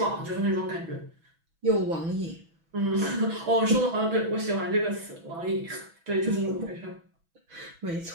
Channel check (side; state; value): left; late; 6.1 ms